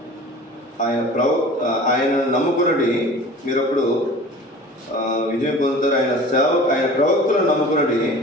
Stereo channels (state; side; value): normal; both; correlation 0.41